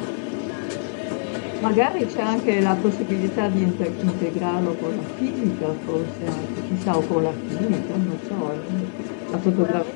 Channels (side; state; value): right; silent; digital silence